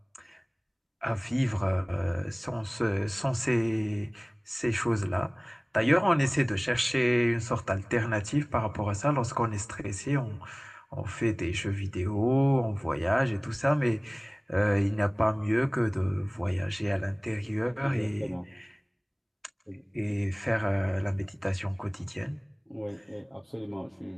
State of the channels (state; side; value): identical; both; correlation 1.00